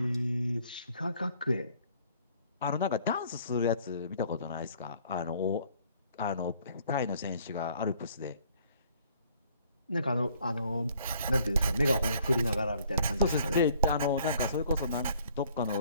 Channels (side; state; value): both; inverted; correlation -0.60